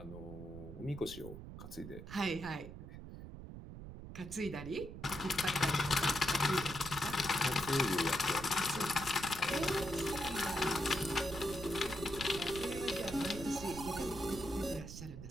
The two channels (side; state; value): right; noise; rumble, 11 dB below the sound